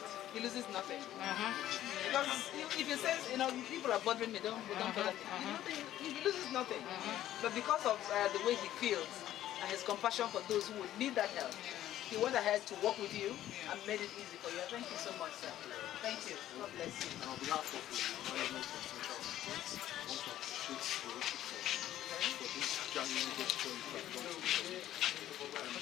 he loses nothing. Because if he says, people are bothering me, don't bother me, he loses nothing. But because of the way he feels and his compassion for those who would need that help, he went ahead to work with you and made it easy for you. Thank you so much, sir. Thank you. God bless you. On behalf of the management of Central Hospital, I want to appreciate for this genuine gesture you have done to the and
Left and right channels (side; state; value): right; quieter; 12.8 dB